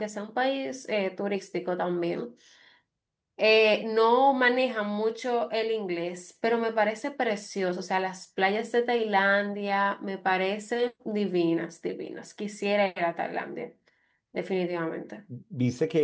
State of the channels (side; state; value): both; identical; correlation 1.00